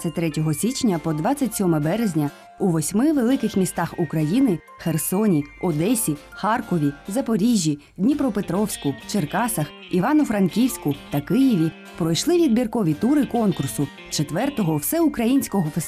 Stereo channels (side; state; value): both; identical; correlation 1.00